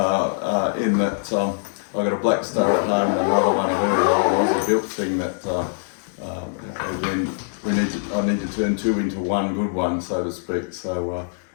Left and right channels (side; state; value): right; silent; digital silence